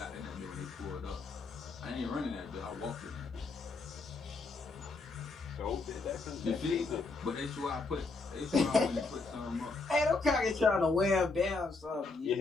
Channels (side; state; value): right; quieter; 3.8 dB